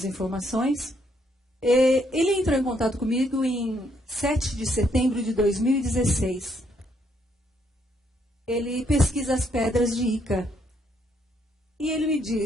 informações. Ele entrou em contato comigo em 7 de setembro de 2016. Ele pesquisa as pedras de Ica. E ele me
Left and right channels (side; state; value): both; normal; correlation 0.72